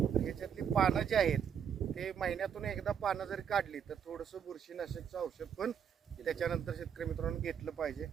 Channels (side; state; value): left; quieter; 8.0 dB